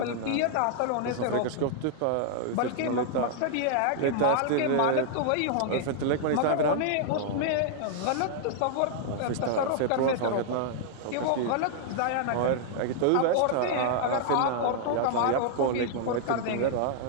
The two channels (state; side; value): different; both; correlation -0.01